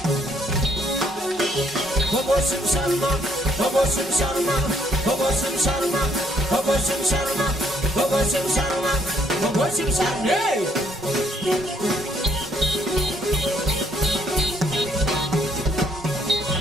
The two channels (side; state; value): both; normal; correlation 0.68